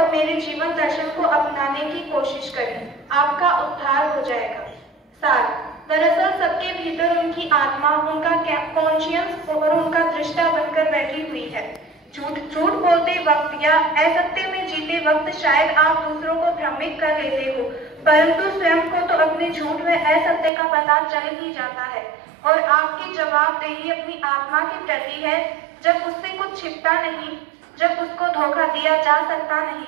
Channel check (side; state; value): left; drops out; at 20.5 s